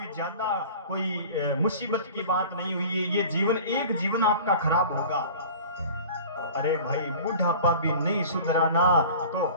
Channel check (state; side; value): inverted; both; correlation -0.40